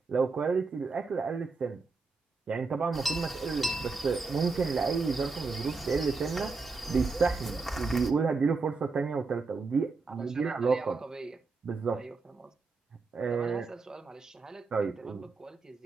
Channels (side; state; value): left; quieter; 4.2 dB